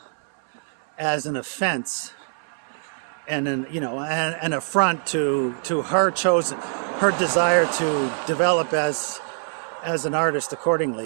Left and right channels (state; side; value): silent; left; 63 dB below the other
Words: as an offense and an affront to her desire to develop as an artist